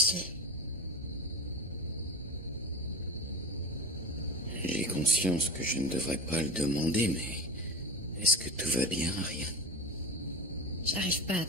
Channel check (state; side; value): normal; both; correlation 0.29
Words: J'ai conscience que je ne devrais pas le demander, mais... Est-ce que tout va bien, Ariane? J'arrive pas à